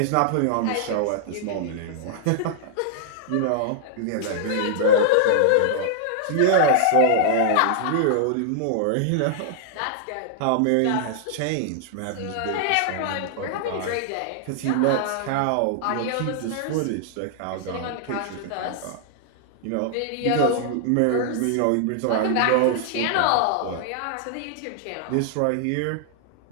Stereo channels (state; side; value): different; both; correlation -0.01